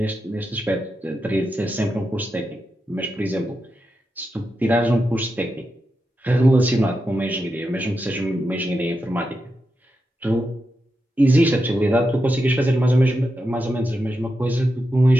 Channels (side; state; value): both; normal; correlation 0.87